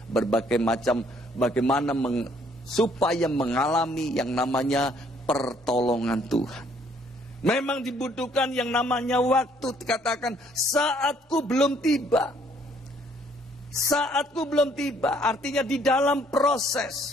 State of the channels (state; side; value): normal; both; correlation 0.64